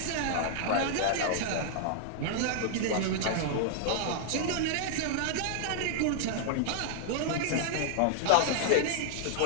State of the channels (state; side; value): different; both; correlation 0.00